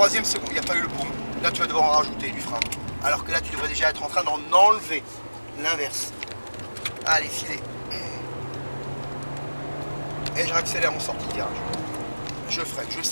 seconde. Il n'y a pas eu le boum. Là tu vas devoir en rajouter du frein. Alors que là tu devrais déjà être en train d'en enlever. L'inverse. Allez, filet. Et je réaccélère en sortie de virage. Je freine, je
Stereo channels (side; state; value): both; inverted; correlation -1.00